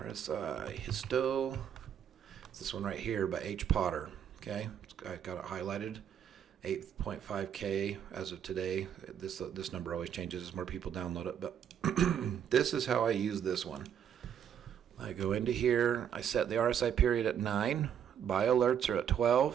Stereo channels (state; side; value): quieter; left; 8.9 dB